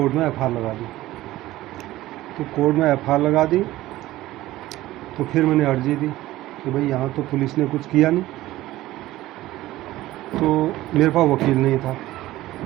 में FIR लगा दी। तो कोर्ट में FIR लगा दी, तो फिर मैंने अर्जी दी कि भाई यहाँ तो पुलिस ने कुछ किया नहीं। तो मेरे पास वकील नहीं था,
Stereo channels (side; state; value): left; quieter; 16.3 dB